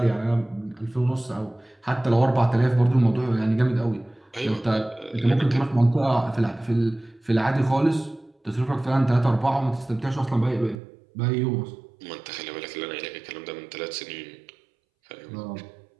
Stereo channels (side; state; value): left; drops out; at 10.8 s